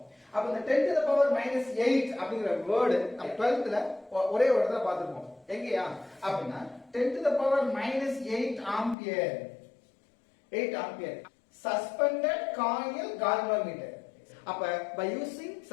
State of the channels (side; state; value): right; drops out; at 9.0 s